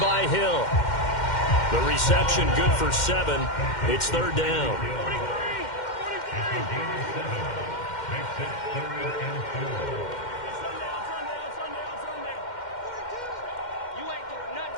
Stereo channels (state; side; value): late; right; 2.1 ms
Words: by Hill. The reception good for 7. It's third down.